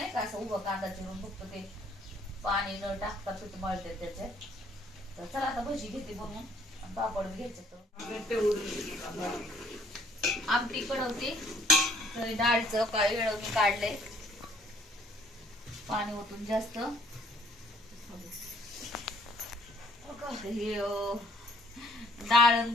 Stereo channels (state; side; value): normal; both; correlation 0.62